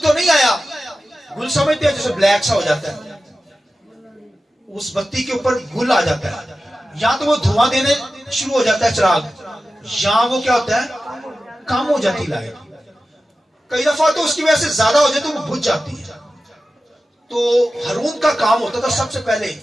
تو نہیں آیا۔ گل سمجھتے ہیں جیسے بلیک سا ہو جاتا ہے، اس بتی کے اوپر گل آ جاتا ہے، یا تو وہ دھواں دینے شروع ہو جاتا ہے چراغ، یا وہ کیا ہوتا ہے؟ کم ہو جاتی لائٹ۔ کئی دفعہ تو اس کی وجہ سے زیادہ ہو جائے تو وہ بجھ جاتی ہے۔ تو ہارون کا کام ہوتا تھا سب سے پہلے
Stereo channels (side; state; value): both; normal; correlation 0.94